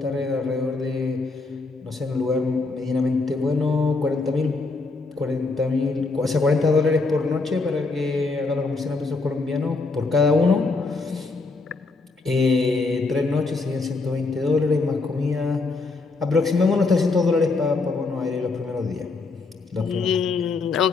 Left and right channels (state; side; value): quieter; right; 3.8 dB